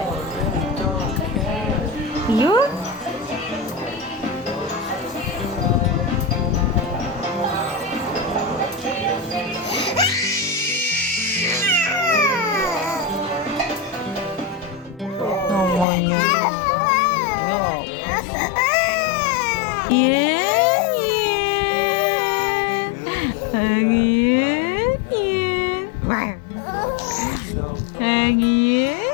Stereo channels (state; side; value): drops out; right; at 15.9 s